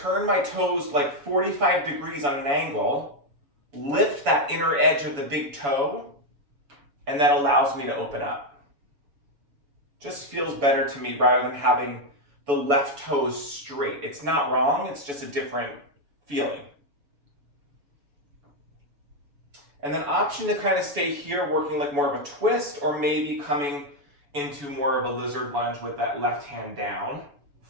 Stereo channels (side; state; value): left; late; 7.1 ms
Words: my toes like 45 degrees on an angle, lift that inner edge of the big toe, and that allows me to open up. Just feels better to me rather than having the left toes straight. It's not wrong, it's just a different feeling. And then option to kind of stay here working like more of a twist, or maybe coming into more of a lizard lunge with that left hand down,